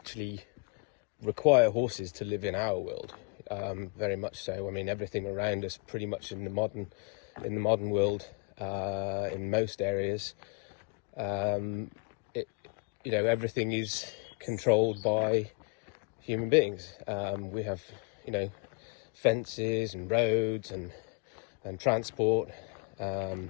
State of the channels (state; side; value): quieter; right; 33.1 dB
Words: require horses to live in our world, very much so. I mean, everything around us, pretty much in the modern world, in most areas, everything is controlled by human beings. We have, fences and roads and transport,